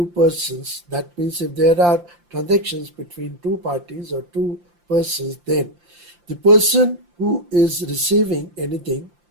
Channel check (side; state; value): left; late; 5.8 ms